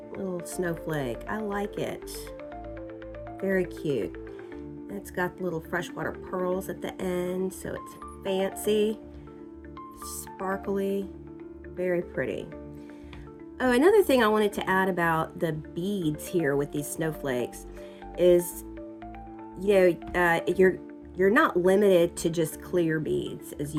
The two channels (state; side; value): identical; both; correlation 1.00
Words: snowflake. I like it. Very cute. It's got little freshwater pearls at the end, so it's fancy, sparkly, very pretty. Oh, another thing I wanted to add about the beads here with these snowflakes is, you know, you're not limited to just clear beads, as